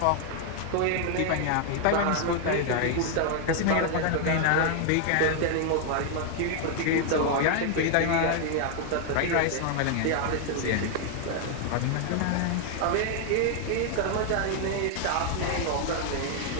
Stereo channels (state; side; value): different; both; correlation 0.00